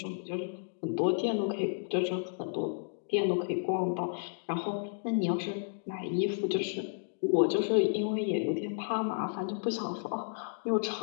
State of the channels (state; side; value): silent; right; digital silence